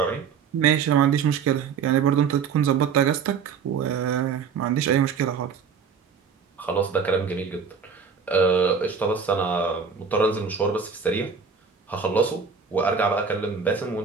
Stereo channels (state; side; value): quieter; left; 6.1 dB